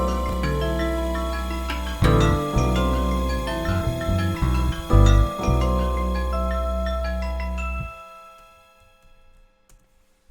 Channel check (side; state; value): both; identical; correlation 1.00